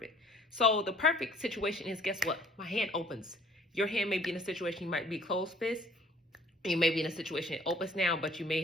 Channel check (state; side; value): normal; both; correlation 0.56